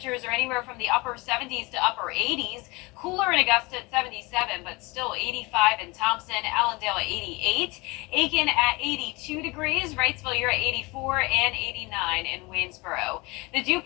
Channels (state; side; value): quieter; right; 24.9 dB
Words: are anywhere from the upper 70s to upper 80s. Cooler in Augusta at 77, but still 85 in Thompson, Allendale at 88, Aiken at 82 degrees, Wrightsville, you're at 84, and 89 in Waynesboro. The dew